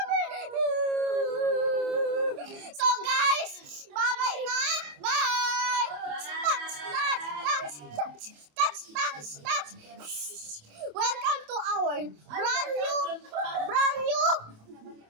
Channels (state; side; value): late; left; 27 ms